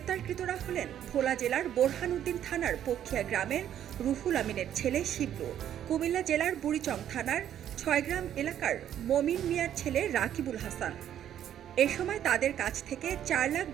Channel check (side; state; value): left; quieter; 10.5 dB